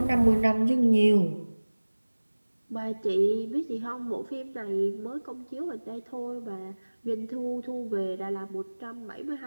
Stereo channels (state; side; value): inverted; both; correlation -1.00